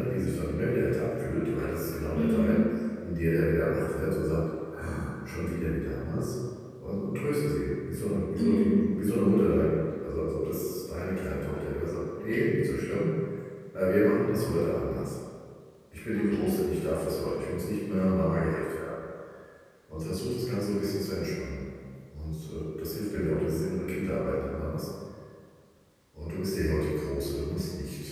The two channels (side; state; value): both; identical; correlation 1.00